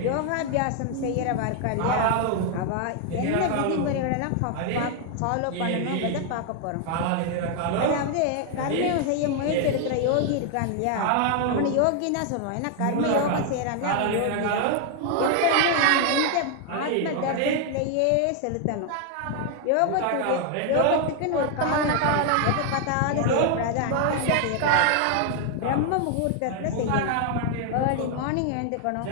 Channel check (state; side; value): different; both; correlation 0.00